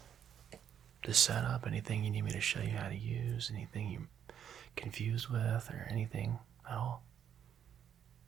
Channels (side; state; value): left; quieter; 9.0 dB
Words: the setup? Anything you need me to show you how to use? Anything you're confused with or anything at all?